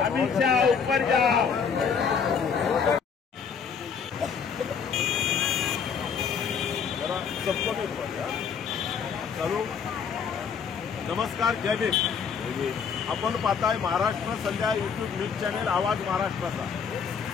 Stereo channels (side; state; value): right; quieter; 6.5 dB